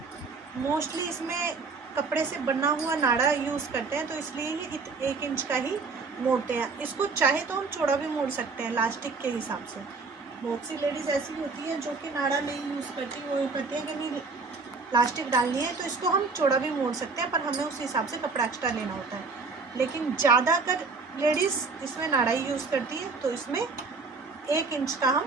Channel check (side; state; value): left; quieter; 4.3 dB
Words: मोस्टली इसमें कपड़े से बना हुआ नाड़ा यूज़ करते हैं, तो इसलिए ये 1 इंच का ही मोड़ते हैं। इसको चाहे तो हम चौड़ा भी मोड़ सकते हैं इलास्टिक के हिसाब से। बहुत सी लेडीज़ ऐसी होती है जो कि नाड़ा नहीं यूज़ करती, वो ये कहते हैं कि नहीं प्लास्टिक डालनी है, तो इसको हम चौड़ा भी मोड़ सकते हैं, पर हमें उस हिसाब से कपड़ा एक्स्ट्रा लेना होता है। लेकिन ज़्यादातर लेडीज़ इसमें नाड़ा ही यूज़ करती है, तो इसमें 1 इंच का हम